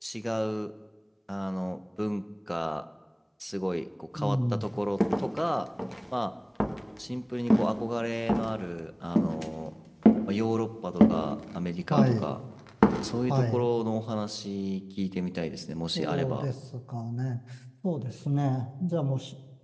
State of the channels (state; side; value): identical; both; correlation 1.00